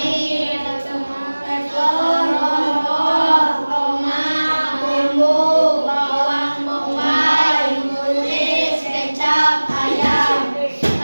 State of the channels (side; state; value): both; inverted; correlation -1.00